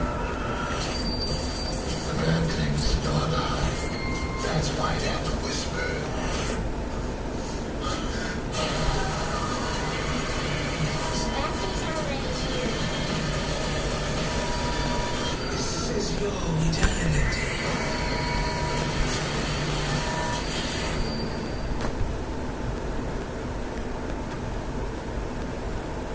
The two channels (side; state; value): both; identical; correlation 1.00